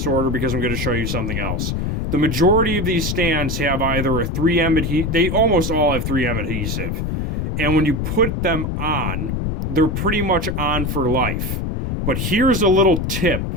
order because I'm going to show you something else. The majority of these stands have either a 3M adhesive. They almost all have 3M adhesive. And when you put them on, they're pretty much on for life. But here's a little tip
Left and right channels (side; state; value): left; noise; rumble, 1 dB below the sound